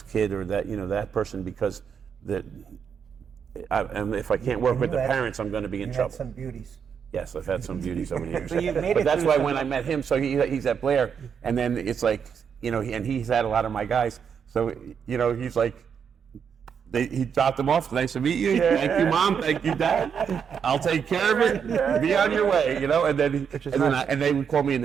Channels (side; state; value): left; quieter; 7.1 dB